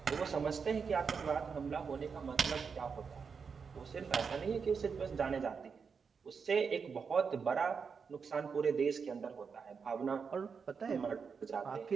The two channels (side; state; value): left; quieter; 5.8 dB